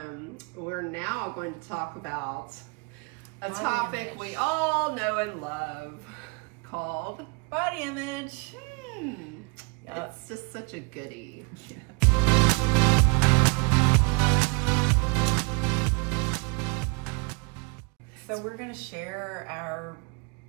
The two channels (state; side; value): quieter; left; 31.1 dB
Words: we're now going to talk about a Body topic image. we all know and love called Body image. It's just such a goodie. So we're going to share our